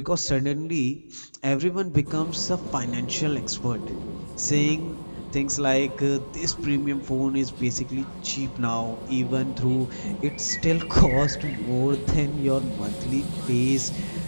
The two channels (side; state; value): both; inverted; correlation -1.00